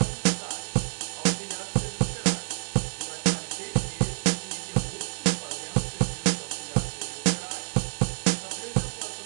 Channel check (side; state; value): left; silent; digital silence